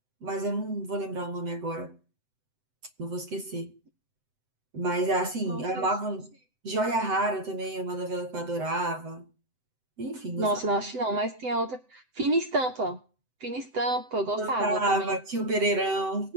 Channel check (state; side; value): late; left; 7.9 ms